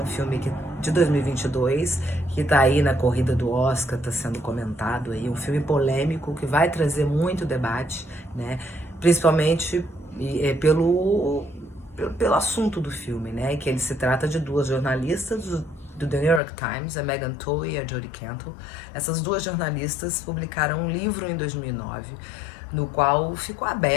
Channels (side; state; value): right; drops out; at 16.4 s